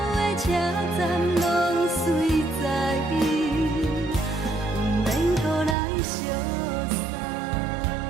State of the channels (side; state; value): left; drops out; at 5.8 s